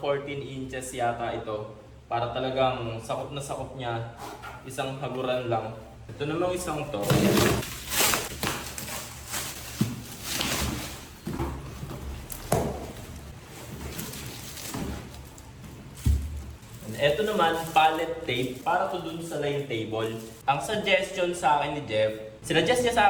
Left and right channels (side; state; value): both; identical; correlation 1.00